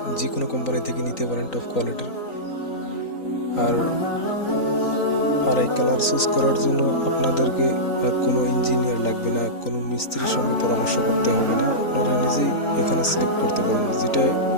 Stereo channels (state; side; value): late; right; 3.9 ms